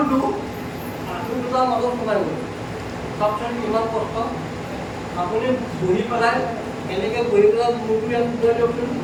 আঁঠু দুটাৰ মাজত সোমাই গ'ল। চাওকচোন কিমান কষ্ট। আপুনি বহি পেলাই এনেকৈ বহি পেলাই মূৰটো ইয়াত সোমাই দিয়কচোন,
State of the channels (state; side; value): identical; both; correlation 1.00